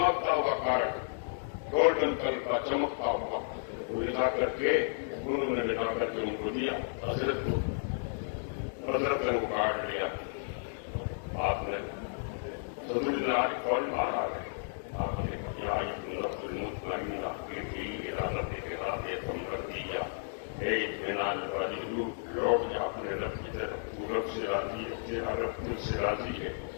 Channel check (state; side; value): silent; right; digital silence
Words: हुआ कार्ड, गोल्डन कलर का चमकता हुआ, वो ले जा करके उन्होंने ले जा करके उनको दिया हजरत को। हजरत ने वो कार्ड लिया, आपने सदरुद्दीन आरिफ फौरन बाहर आ गए। आपने लौट जा अपने रब की तरफ, रब से राजी है, तेरा रब तुझ से राजी है।